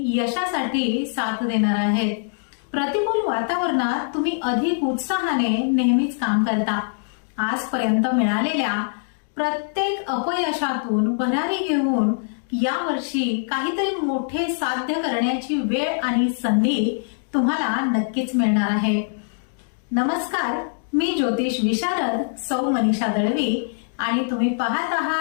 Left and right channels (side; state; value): right; silent; digital silence